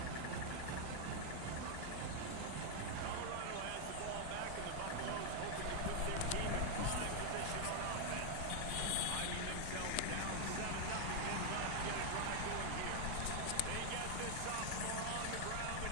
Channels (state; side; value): different; both; correlation 0.00